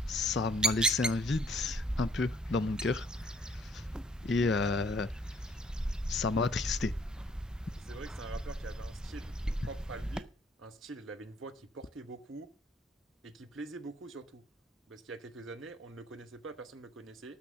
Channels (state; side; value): normal; both; correlation 0.61